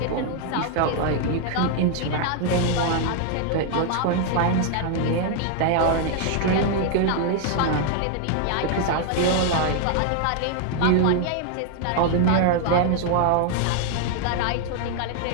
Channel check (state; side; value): different; both; correlation 0.00